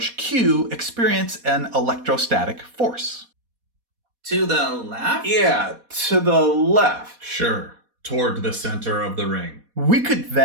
q experience an electrostatic force? To the left? Yeah, to the left. Sure, toward the center of the ring. We could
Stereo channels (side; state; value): left; late; 4.2 ms